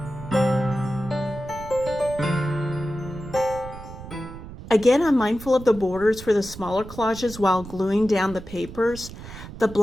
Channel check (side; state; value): right; noise; rumble, 13 dB below the sound